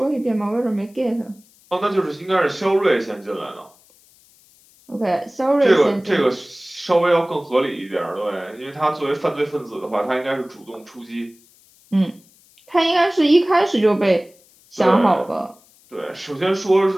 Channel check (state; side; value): noise; left; hiss, 29 dB below the sound